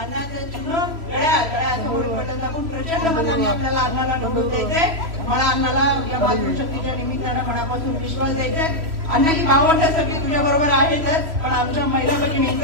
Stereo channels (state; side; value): late; left; 3.0 ms